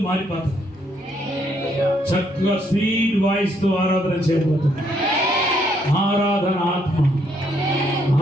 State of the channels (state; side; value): normal; both; correlation 0.71